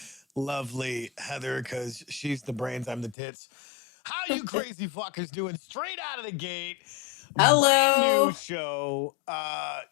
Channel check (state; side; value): drops out; right; at 3.2 s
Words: lovely Heather, because she's the brains, I'm the tits. How you crazy fuckers doing? Straight out of the gate. Brand new Hello. show.